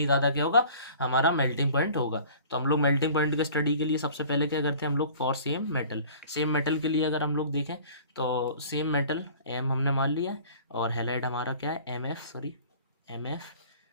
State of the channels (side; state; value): both; inverted; correlation -0.47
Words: ज़्यादा क्या होगा, हमारा मेल्टिंग पॉइंट होगा। तो हम लोग मेल्टिंग पॉइंट के स्टडी के लिए सबसे पहले क्या करते हैं हम लोग, फॉर सेम मेटल के लिए अगर हम लोग देखें तो सेम मेटल एम हमने मान लिया है, और हेलाइड हमारा क्या है, एम एफ,